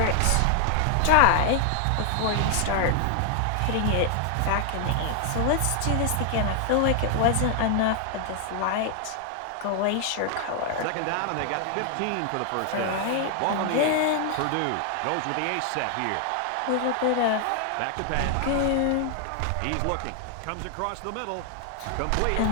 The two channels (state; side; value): different; both; correlation 0.00